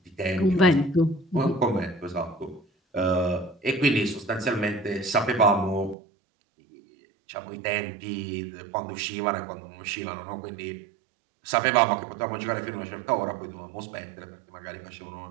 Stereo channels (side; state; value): left; drops out; at 6.0 s